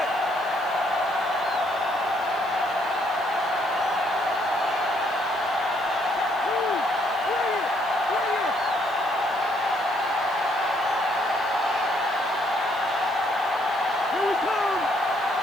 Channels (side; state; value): left; noise; hiss, 25 dB below the sound